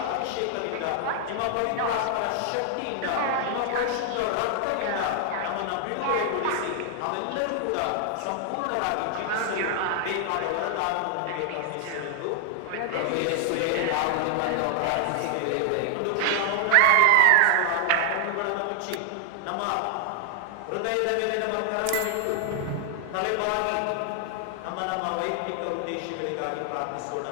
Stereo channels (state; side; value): different; both; correlation 0.00